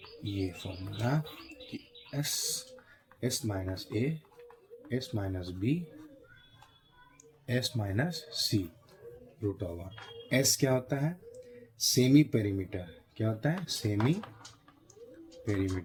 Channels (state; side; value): identical; both; correlation 1.00